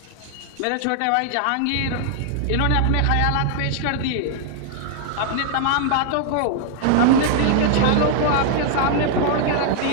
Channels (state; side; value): different; both; correlation 0.00